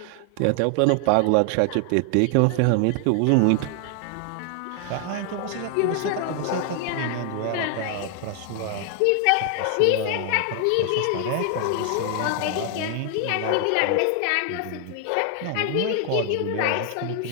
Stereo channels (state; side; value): different; both; correlation 0.00